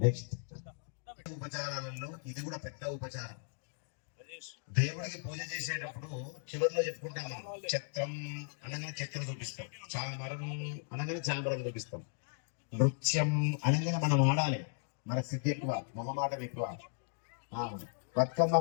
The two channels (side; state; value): right; silent; digital silence